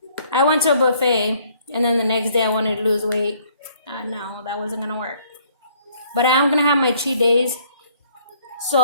I went to a buffet, and then the next day I wanted to lose weight. No, that wasn't going to work. But I am going to have my cheat days.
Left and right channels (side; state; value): both; inverted; correlation -0.63